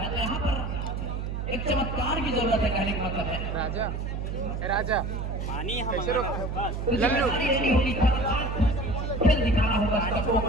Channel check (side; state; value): right; noise; hum, 4 dB below the sound